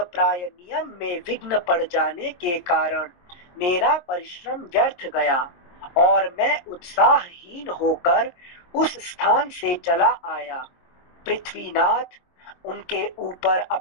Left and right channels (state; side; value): late; right; 23 ms